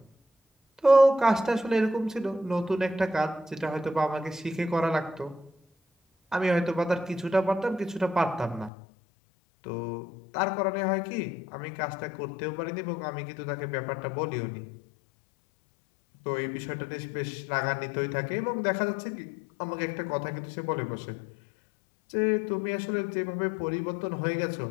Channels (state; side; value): drops out; right; at 8.7 s